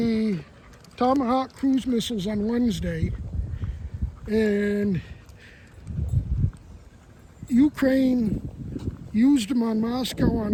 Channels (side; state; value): both; identical; correlation 1.00